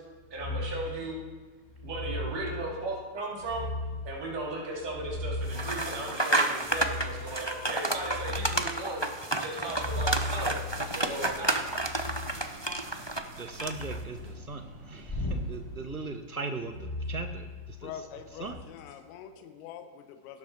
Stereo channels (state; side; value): late; right; 1.2 ms